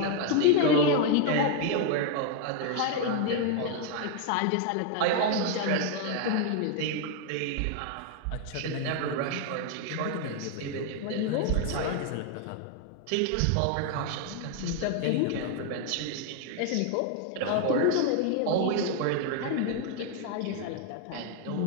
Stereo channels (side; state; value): both; different; correlation 0.01